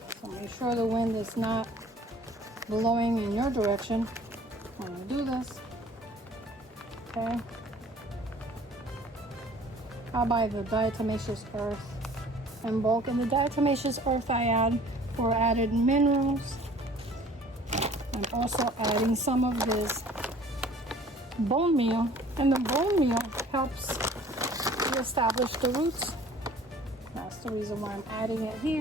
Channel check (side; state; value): both; normal; correlation 0.51